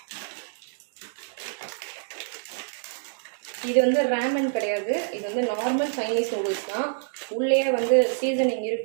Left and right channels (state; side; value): silent; left; digital silence